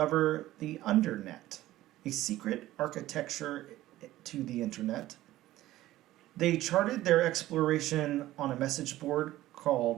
the Undernet, a secret architecture to the internet. They charted their exploration on a message board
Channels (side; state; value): left; quieter; 15.4 dB